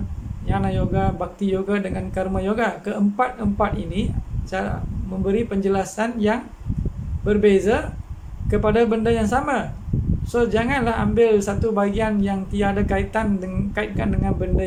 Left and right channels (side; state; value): both; identical; correlation 1.00